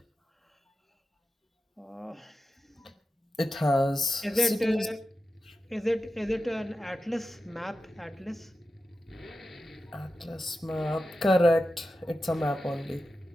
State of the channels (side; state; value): both; normal; correlation 0.92